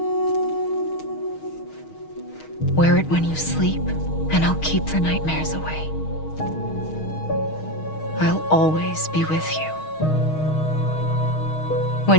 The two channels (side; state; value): right; late; 6.4 ms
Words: Wear it when you sleep, and I'll keep the nightmares away. I'll always be with you.